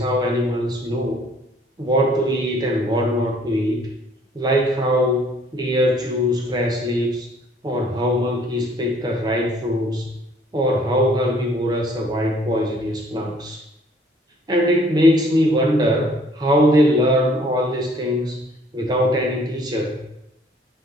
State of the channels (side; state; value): both; normal; correlation 0.59